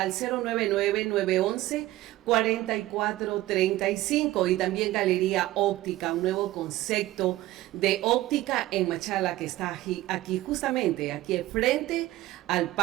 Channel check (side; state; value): left; quieter; 16.5 dB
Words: 099-911-4435 y también Galería Óptica, un nuevo concepto de óptica en Machala que está aquí justamente, aquí frente al